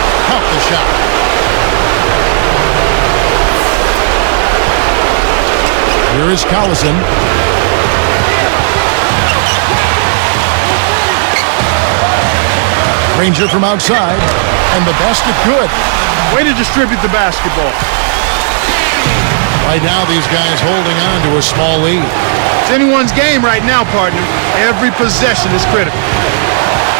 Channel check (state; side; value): silent; left; digital silence